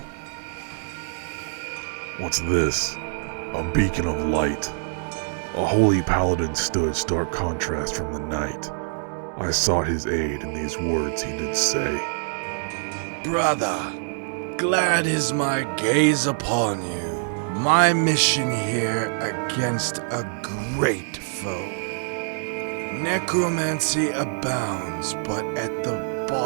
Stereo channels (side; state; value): left; silent; digital silence